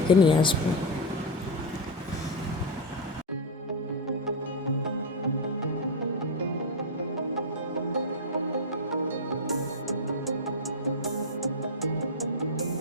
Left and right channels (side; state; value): both; normal; correlation 0.04